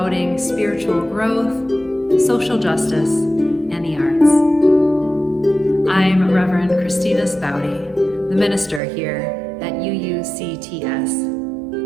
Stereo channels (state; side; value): drops out; left; at 8.8 s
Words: spiritual growth, social justice, and the arts. I'm Reverend Kristina Spaude, the minister here at UUCTS.